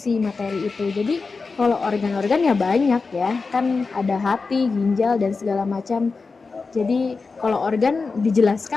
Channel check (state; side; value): quieter; right; 4.4 dB